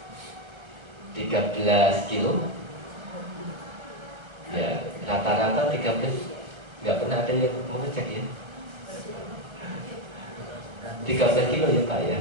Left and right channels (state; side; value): late; left; 1.3 ms